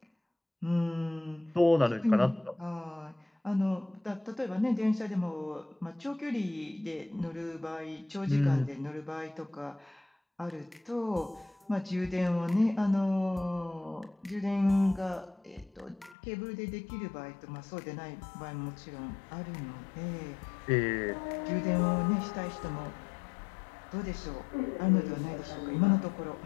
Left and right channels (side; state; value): right; drops out; at 16.2 s